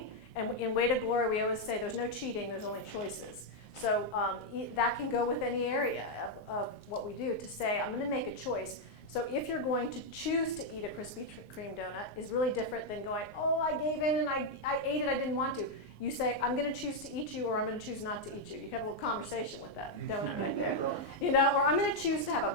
And in Way to Glory, we always say there's no cheating, there's only choices. So that can go with any area of what we do, to say, I'm going to make a choice. So if you're going to choose to eat a Krispy Kreme donut, is really different than going, oh, I gave in and I ate it, I didn't want to. You say, I'm going to choose to eat you, or I'm going to choose not to eat you. You can have a little conversation with that donut right there. Or I'm going to choose to have a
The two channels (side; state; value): right; late; 19 ms